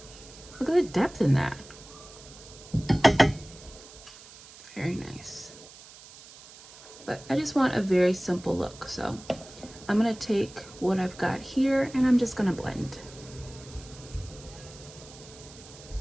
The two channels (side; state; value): right; noise; hiss, 19 dB below the sound